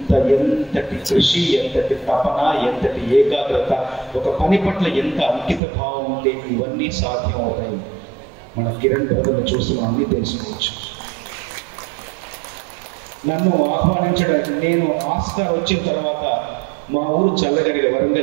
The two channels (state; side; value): drops out; left; at 5.6 s